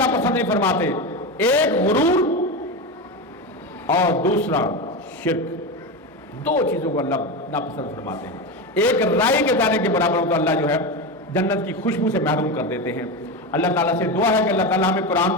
پسند نہیں فرماتے، ایک غرور اور دوسرا شرک۔ 2 چیزوں کو اللہ ناپسند فرماتے ہیں۔ ایک رائی کے دانے کے برابر ہو تو اللہ جو ہے جنت کی خوشبو سے محروم کر دیتے ہیں۔ اللہ تعالیٰ سے دعا ہے کہ اللہ تعالیٰ ہمیں قرآن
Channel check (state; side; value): normal; both; correlation 0.18